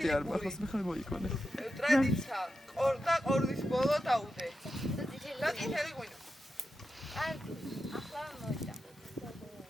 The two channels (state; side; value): normal; both; correlation 0.89